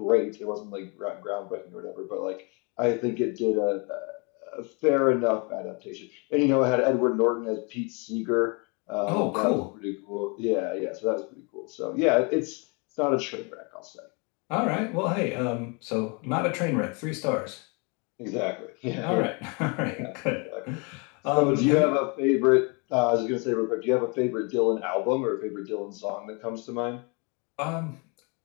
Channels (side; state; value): right; quieter; 32.4 dB